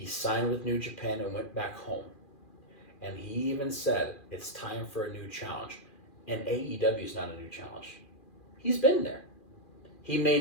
signed with New Japan and went back home. And he even said, it's time for a new challenge. And AEW is not a new challenge. He's been there. He may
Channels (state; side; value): late; right; 2.4 ms